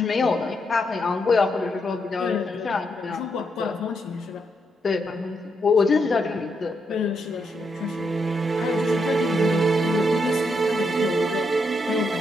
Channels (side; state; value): both; normal; correlation 0.80